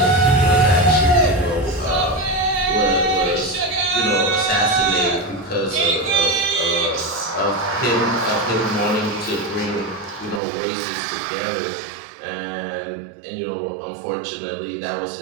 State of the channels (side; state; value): left; drops out; at 10.4 s